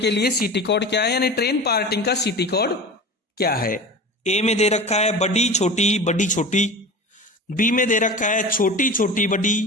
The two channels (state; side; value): normal; both; correlation 0.33